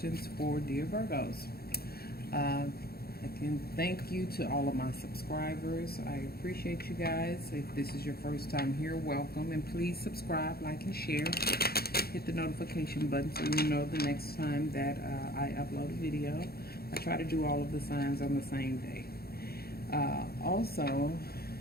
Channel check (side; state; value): right; late; 0.45 ms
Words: for dear Virgos. Again, thank you to all of my subscribers. I appreciate you guys. If this is your first time here, welcome, and please subscribe, like, and share. Hit the notification button so you know the next time that I upload a video. I try to do all of the signs on the same day. Also,